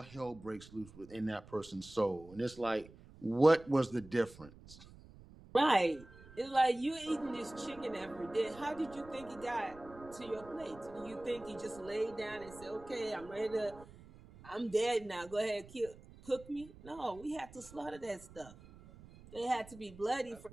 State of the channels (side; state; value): right; noise; rumble, 20 dB below the sound